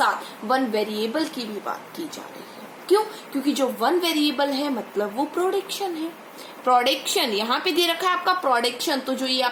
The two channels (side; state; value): both; identical; correlation 1.00